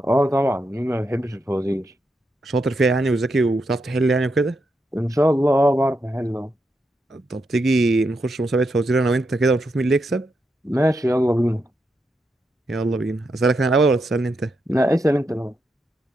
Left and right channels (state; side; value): normal; both; correlation 0.83